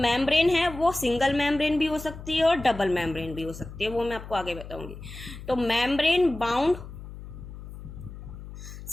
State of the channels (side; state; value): left; noise; hum, 13 dB below the sound